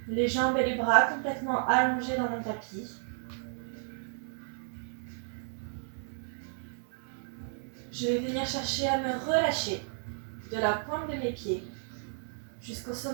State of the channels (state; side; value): silent; left; digital silence